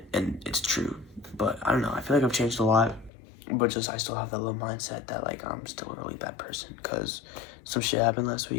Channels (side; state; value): right; drops out; at 3.1 s